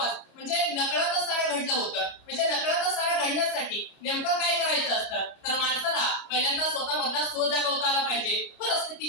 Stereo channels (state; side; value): late; right; 29 ms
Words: म्हणजे नकळतच सारं घडलं होतं. म्हणजे नकळतच सारं घडण्यासाठी नेमकं काय करायचं असतं, तर माणसाला पहिल्यांदा स्वतःमधला स्व जागवता आला पाहिजे,